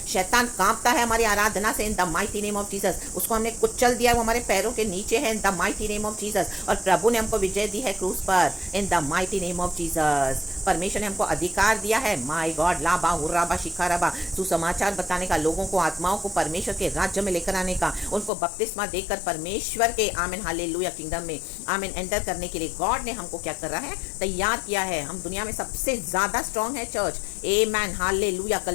शैतान कांपता है हमारी आराधना से इन the mighty name of Jesus. उसको हमने कुचल दिया, वो हमारे पैरों के नीचे है in the mighty name of Jesus. और प्रभु ने हमको विजय दी है क्रूस पर इन the mighty name of Jesus. परमेश्वर ने हमको अधिकार दिया है, माय गॉड, लाबा हुर्राबा शिखाराबा, सुसमाचार बताने का, लोगों को, आत्माओं को परमेश्वर के राज्य में लेकर आने का, उनको बपतिस्मा देकर परमेश्वर के आमीन हालेलुया किंगडम में आमीन एंटर करने के लिए गॉड ने हमको क्या कर रहा है, तैयार किया है। हम दुनिया में सबसे ज्यादा स्ट्रांग है चर्च। आमीन हालेलुया।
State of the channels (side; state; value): right; drops out; at 18.3 s